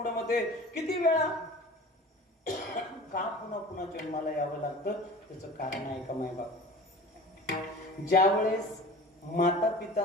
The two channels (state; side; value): normal; both; correlation 0.39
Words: किती वेळा का पुन्हा जन्माला यावं लागतं? त्याचं कारण आहे का मायबाप? ज्या वेळेस माता